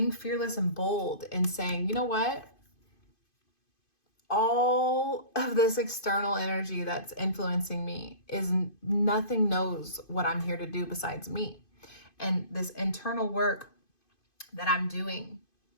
fearless and bold and saying, you know what? All of this external energy that's influencing me is nothing knows what I'm here to do besides me. And this internal work that I'm doing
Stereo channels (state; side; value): late; right; 2.5 ms